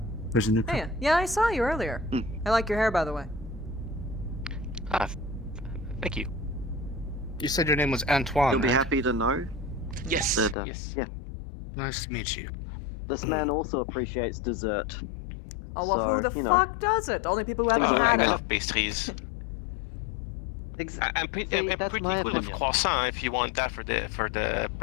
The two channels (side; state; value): right; drops out; at 10.6 s